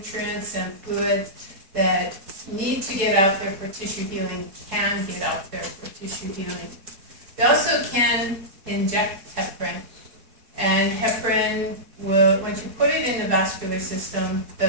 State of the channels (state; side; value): late; left; 4.7 ms